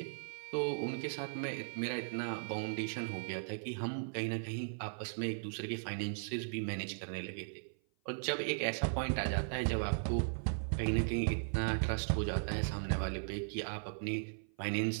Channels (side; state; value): left; silent; 53 dB below the other